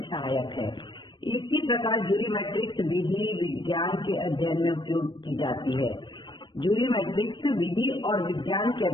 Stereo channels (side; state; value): right; late; 0.22 ms